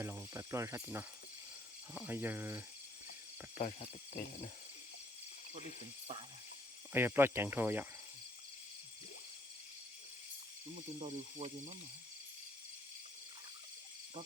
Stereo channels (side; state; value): both; normal; correlation 0.66